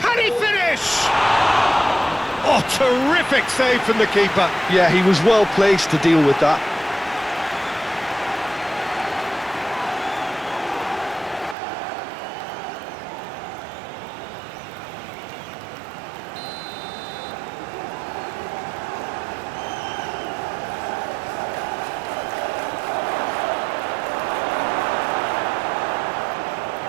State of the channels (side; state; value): left; drops out; at 11.6 s